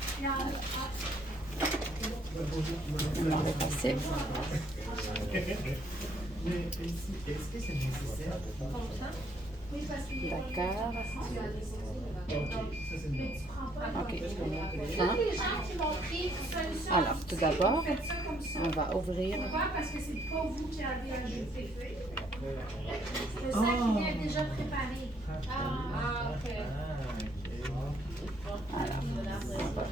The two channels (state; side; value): normal; both; correlation 0.67